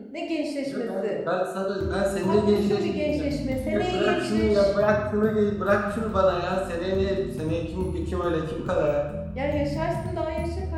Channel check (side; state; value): both; identical; correlation 1.00